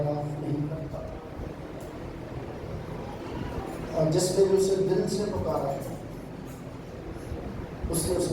نہیں کرتا. اور جس نے بھی اسے دل سے پکارا ہے اس نے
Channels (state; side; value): identical; both; correlation 1.00